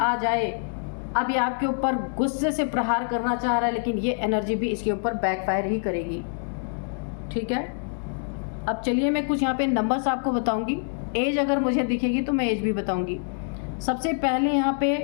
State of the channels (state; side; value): silent; right; digital silence